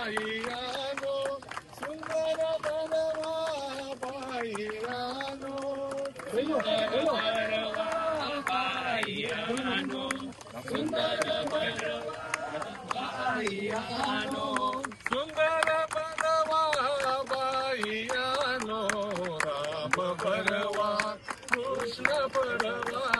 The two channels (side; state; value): both; identical; correlation 1.00